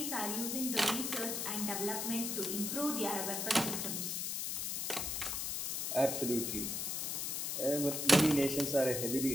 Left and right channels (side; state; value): left; noise; hiss, 1 dB below the sound